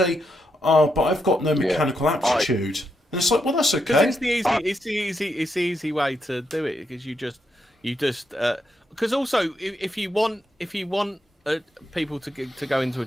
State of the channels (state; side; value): normal; both; correlation 0.82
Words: but I've got no mechanical aptitude. And it's like, well, that's okay. It's the easy way to do it because you just because also if you want people to go into a